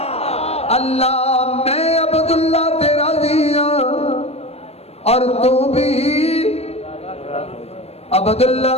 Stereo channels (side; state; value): right; late; 0.30 ms